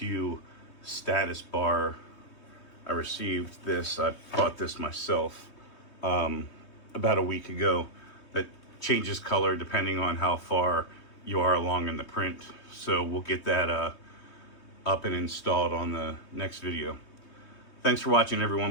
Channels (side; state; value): right; late; 3.2 ms